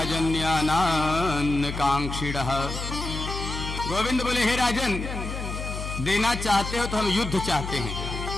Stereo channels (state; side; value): noise; left; hum, 6 dB below the sound